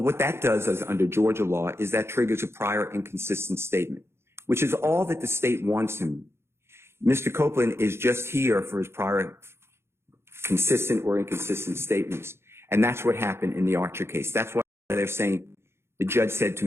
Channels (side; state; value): left; late; 0.12 ms